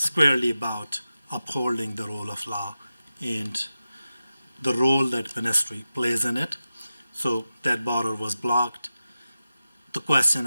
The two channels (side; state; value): both; inverted; correlation -0.93